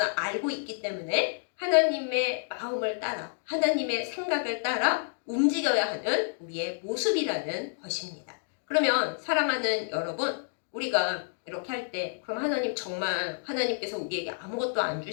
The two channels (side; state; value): right; silent; digital silence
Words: 알고 있기 때문에 하나님의 마음을 따라 하나님의 생각을 따라 움직여야 하는 우리의 모습이라는 것입니다. 그러면 사랑하는 여러분, 우리가 이렇게 할 때 그럼 하나님 정말 하나님께서 우리에게 아무것도 안